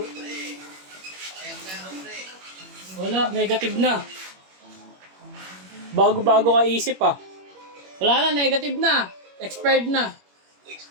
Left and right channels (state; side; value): late; left; 21 ms